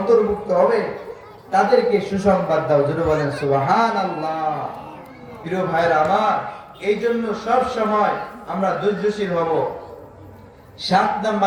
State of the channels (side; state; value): both; identical; correlation 1.00